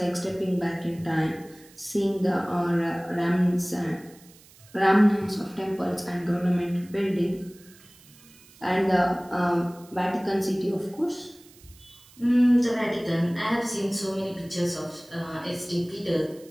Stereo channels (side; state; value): right; noise; hiss, 25 dB below the sound